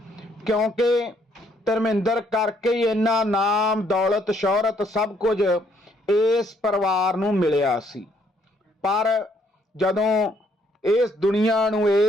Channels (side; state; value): both; normal; correlation 0.69